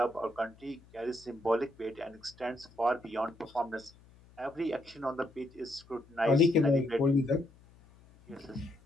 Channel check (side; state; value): left; noise; hum, 26 dB below the sound